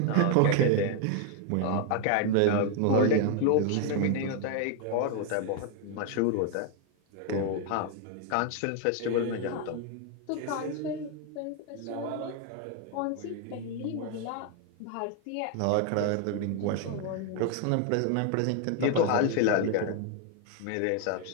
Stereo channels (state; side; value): different; both; correlation 0.01